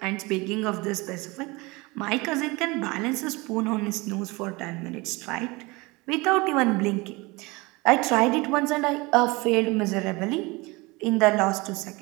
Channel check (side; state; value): left; quieter; 24.4 dB